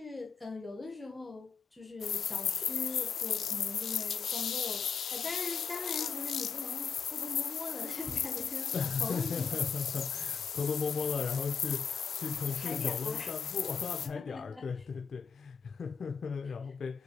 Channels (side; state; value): right; quieter; 6.2 dB